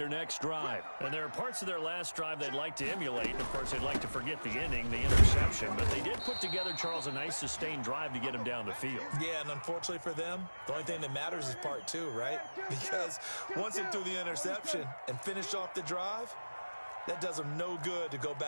next drive. And there are parts of their last drive they'd like to emulate. Of course, they'd like to forget the ending, the interception. But they did put together, Charles, a nice sustained drive to get him down the field. Yeah, and unfortunately for them, the only thing that matters is part two, right? Because once they threw the interception and finished off the drive, that does them no good to go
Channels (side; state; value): both; inverted; correlation -1.00